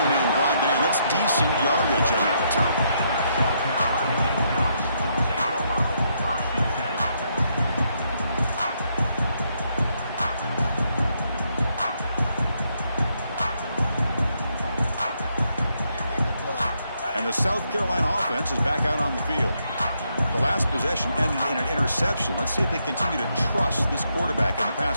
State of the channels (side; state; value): both; inverted; correlation -0.76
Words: brought down. That's decent yardage on that return. And the South Carolina offense is back out on the field. The last possession ended in an interception. Let's see if they continue to trust this quarterback in the